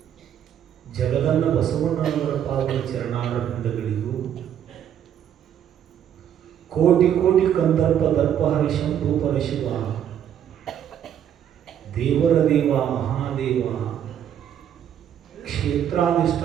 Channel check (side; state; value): left; quieter; 9.7 dB